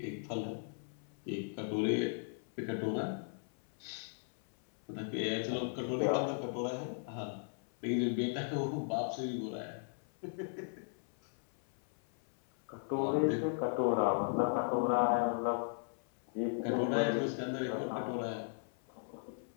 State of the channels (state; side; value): silent; right; 53 dB below the other